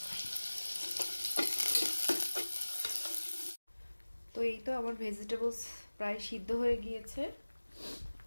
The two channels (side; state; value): both; inverted; correlation -1.00